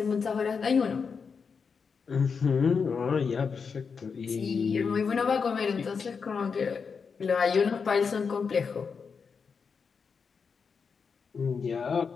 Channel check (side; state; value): right; quieter; 5.7 dB